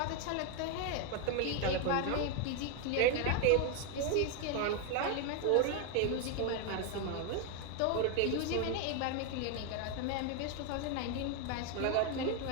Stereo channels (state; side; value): different; both; correlation 0.01